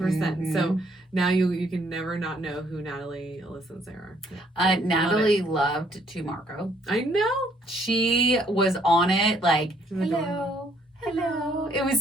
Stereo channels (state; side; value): normal; both; correlation 0.66